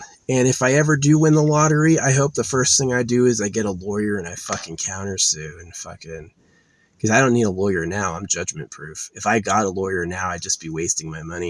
if I ever do win the lottery, I hope the first thing I do is I get a lawyer and I fucking countersue and fucking, because I don't need a lawyer now. I'm judgment proof. If I got a lawyer now, I'd just be wasting my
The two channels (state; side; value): identical; both; correlation 1.00